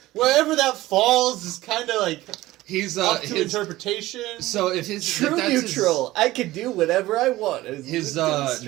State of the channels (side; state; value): left; quieter; 17.1 dB